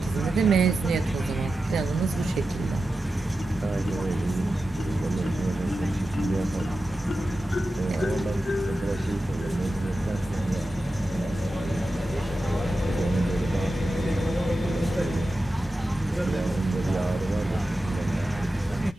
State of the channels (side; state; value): both; normal; correlation 0.92